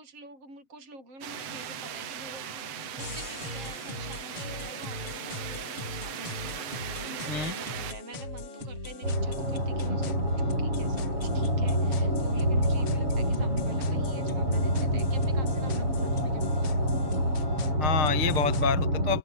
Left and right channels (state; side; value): late; left; 7.8 ms